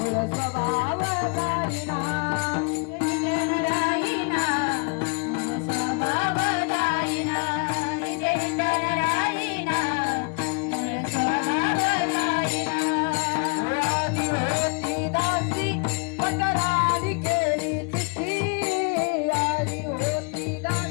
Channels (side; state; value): right; quieter; 33.5 dB